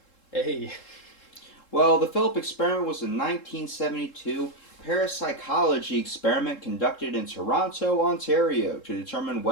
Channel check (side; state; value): right; late; 3.7 ms